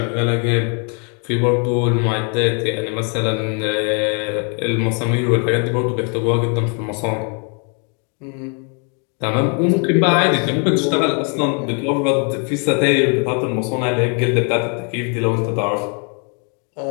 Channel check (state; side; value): quieter; right; 38.6 dB